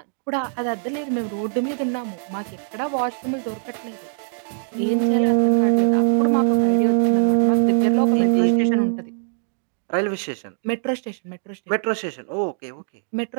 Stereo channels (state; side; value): silent; left; digital silence